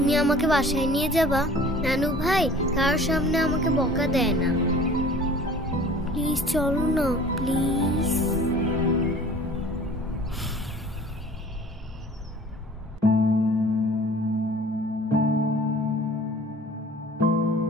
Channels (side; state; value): both; normal; correlation 0.47